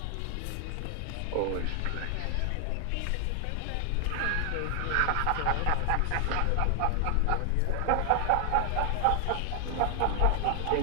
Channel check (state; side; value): different; both; correlation 0.00